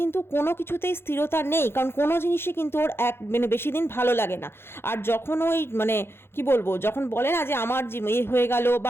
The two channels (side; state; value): right; late; 0.11 ms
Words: কোনো কিছুতেই স্থিরতা নেই, কারণ কোনো জিনিসই কিন্তু ওর মানে বেশি দিন ভালো লাগে না। আর যখন ওই মানে কি বলবো, যখন বলে না যে আমার হয়ে গেল